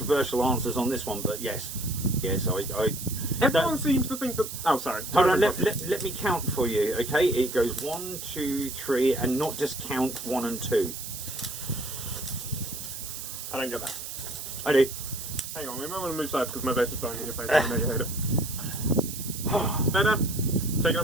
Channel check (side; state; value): right; noise; hiss, 8 dB below the sound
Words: answers on this one, but yes. Yes, Everyone seems to think that. Oh, sorry. Hold on, let me count for you, okay? It goes 1, 2, 3, and not just count 1 and 2. I don't get that. I do. Hang on, we might want to move sides because my vape is blowing in your face. I know you hate it. Better? Taking